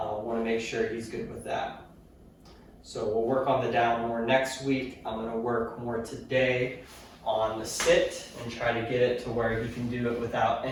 to make sure he's good with that. So we'll work on the down more next week. I'm going to work more today on the sit and try to get it to where he can do it without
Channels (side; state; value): both; identical; correlation 1.00